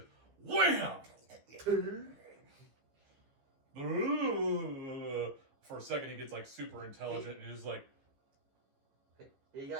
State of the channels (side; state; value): left; late; 15 ms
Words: wham! For a second, he gets like super intelligent and he's like, He